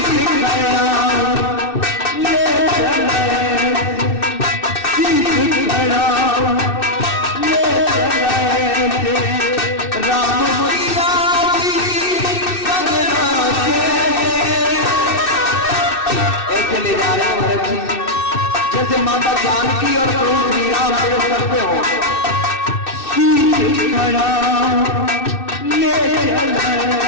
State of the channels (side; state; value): right; late; 2.6 ms